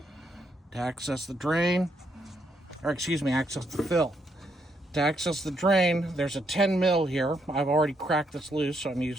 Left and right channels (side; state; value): both; normal; correlation 0.76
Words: To access the drain, access the fill. To access the drain, there's a 10 mil here. I've already cracked this loose, so I'm